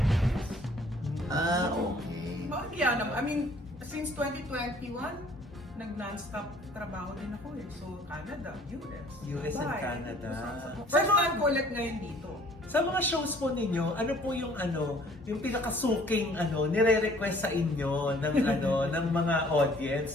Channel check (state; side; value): normal; both; correlation 0.55